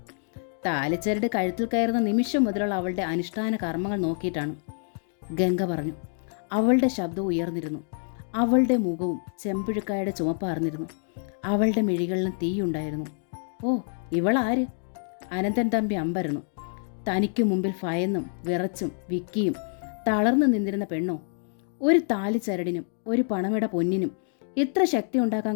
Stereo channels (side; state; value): right; silent; 60 dB below the other